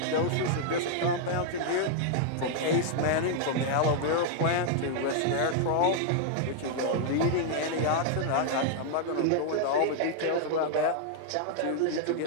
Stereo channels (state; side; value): different; both; correlation -0.01